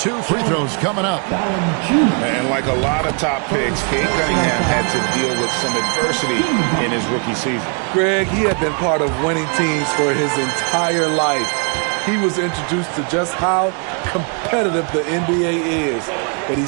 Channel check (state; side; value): quieter; left; 38.7 dB